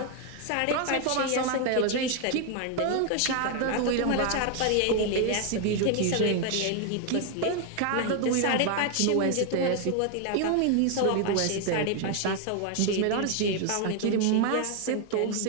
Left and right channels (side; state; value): both; different; correlation 0.01